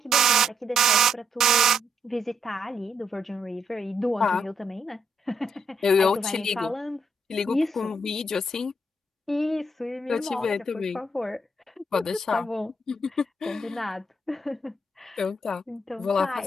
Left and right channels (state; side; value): normal; both; correlation 0.75